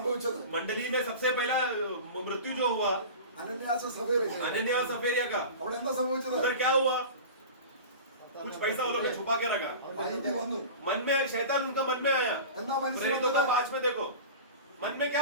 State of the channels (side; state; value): both; inverted; correlation -0.34